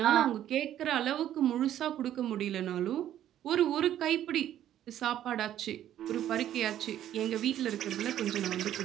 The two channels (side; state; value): left; quieter; 11.6 dB